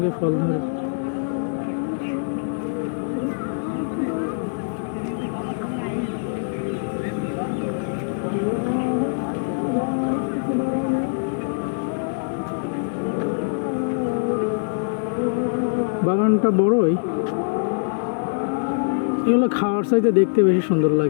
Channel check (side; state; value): right; silent; digital silence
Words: ফল ধরে। বাগানটা বড়ই। এগুলো খাওয়ার চাইতে দেখতে বেশি সুন্দর